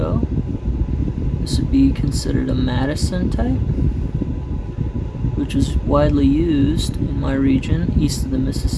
This would be considered a Madison type, which is widely used in my region, east of the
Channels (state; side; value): identical; both; correlation 1.00